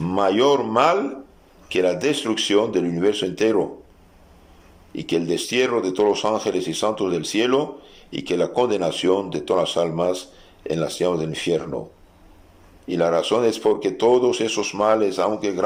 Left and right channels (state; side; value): identical; both; correlation 1.00